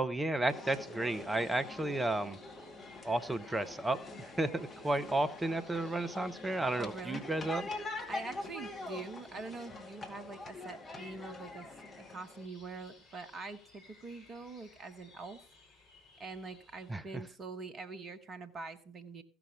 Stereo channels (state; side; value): normal; both; correlation 0.82